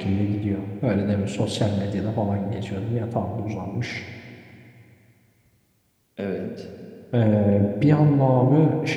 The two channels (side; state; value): both; identical; correlation 1.00